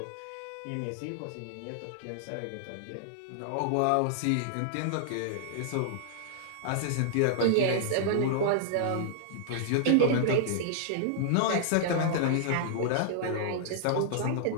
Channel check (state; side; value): different; both; correlation -0.01